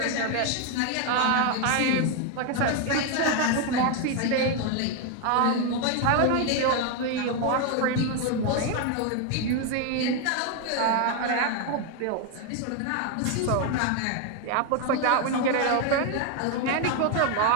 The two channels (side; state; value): both; different; correlation 0.01